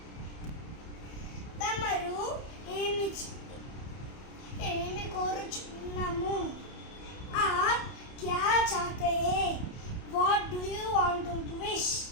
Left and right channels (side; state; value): right; late; 30 ms